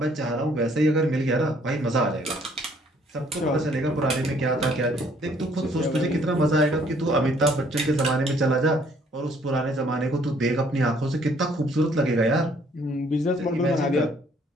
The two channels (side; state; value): both; normal; correlation 0.62